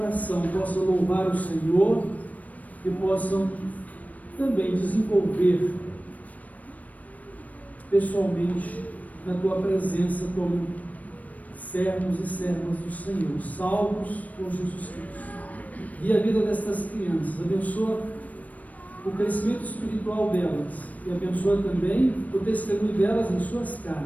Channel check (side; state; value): right; late; 0.072 ms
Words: possam louvar o Senhor e possam também desenvolver pessoalmente na Tua presença como servos e servas do Senhor, salvos por Jesus Cristo. E a vida destas crianças, abençoa o crescimento espiritual delas e abençoa também o testemunho delas em suas